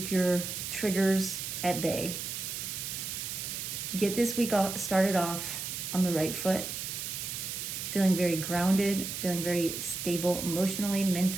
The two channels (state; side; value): noise; right; hiss, 5 dB below the sound